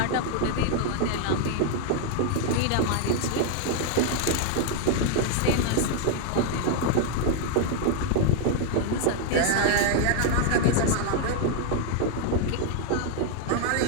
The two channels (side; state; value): both; different; correlation 0.00